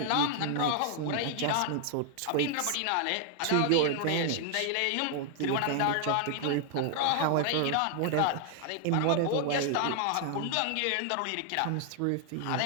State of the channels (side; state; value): both; different; correlation 0.00